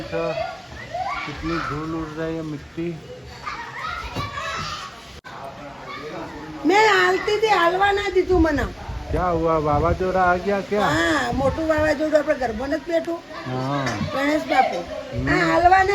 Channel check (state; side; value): identical; both; correlation 1.00